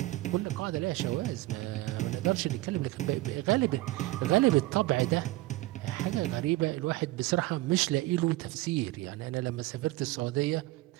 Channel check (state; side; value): quieter; left; 18.6 dB